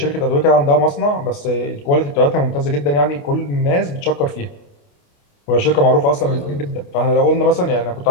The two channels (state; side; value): late; right; 28 ms